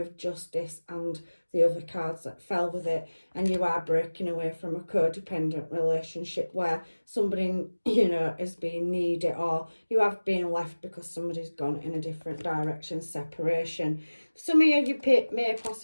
justice and the other cards that fell with it, and you are breaking away from a codependent relationship where somebody, you know, is being needy, or you have been left because somebody's gone in a different direction, separation. Some of you may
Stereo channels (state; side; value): inverted; both; correlation -1.00